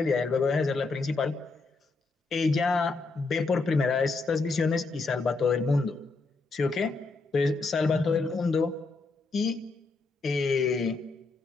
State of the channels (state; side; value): quieter; right; 3.8 dB